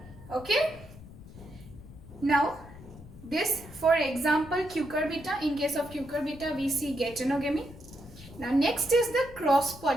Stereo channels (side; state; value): left; noise; rumble, 17 dB below the sound